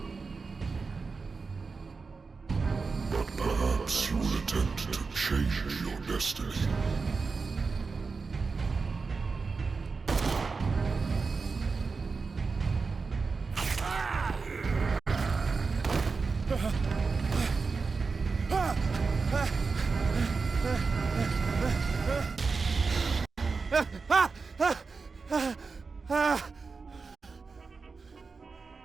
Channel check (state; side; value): quieter; left; 4.6 dB